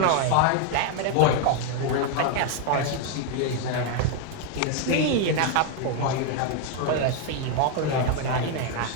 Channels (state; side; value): different; both; correlation 0.01